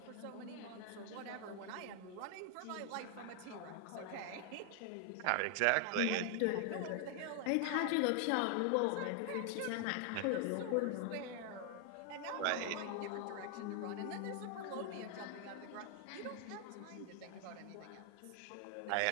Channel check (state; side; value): different; both; correlation 0.00